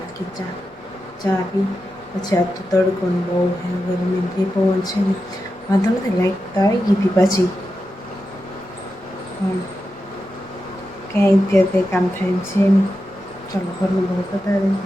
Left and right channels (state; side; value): normal; both; correlation 0.90